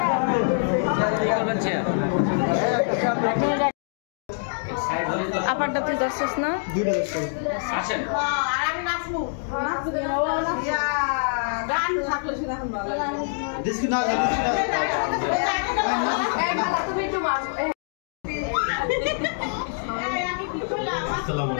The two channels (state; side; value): silent; right; digital silence